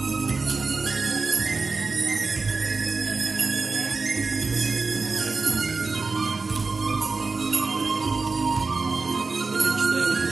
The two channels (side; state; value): left; quieter; 4.1 dB